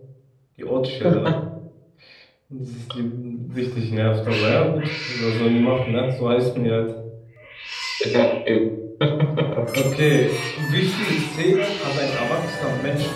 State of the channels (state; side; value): identical; both; correlation 1.00